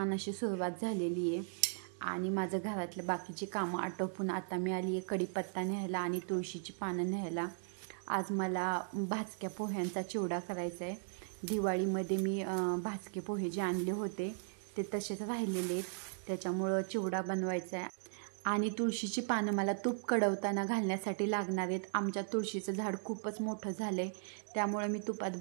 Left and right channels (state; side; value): silent; left; digital silence